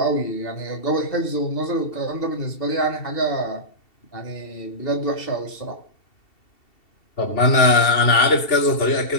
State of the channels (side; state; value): right; late; 2.7 ms